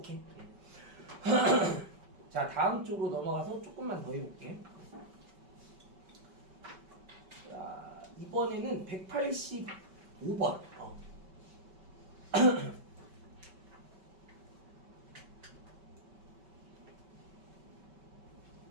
자 다음 쪽으로 넘어가서 조금만 더 해볼게. 자 이번에는 185번.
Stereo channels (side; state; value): left; late; 5.2 ms